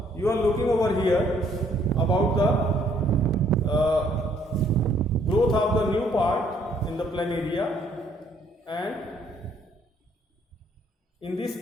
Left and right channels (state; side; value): normal; both; correlation 0.65